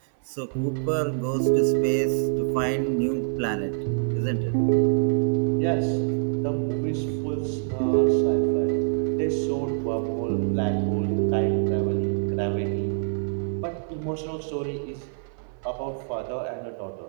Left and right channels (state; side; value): silent; left; 58 dB below the other